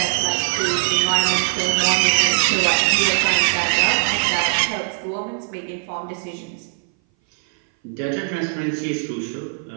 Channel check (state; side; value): silent; left; 60 dB below the other